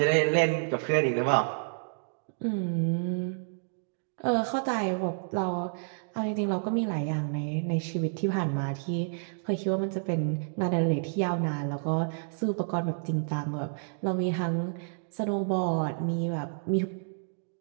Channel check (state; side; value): silent; left; digital silence